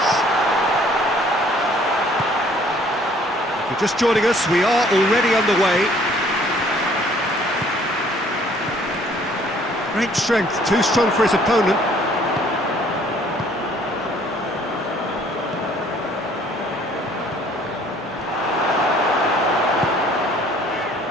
If you're just joining us, we are already underway. Great strength, too strong for his opponent.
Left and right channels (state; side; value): normal; both; correlation 0.58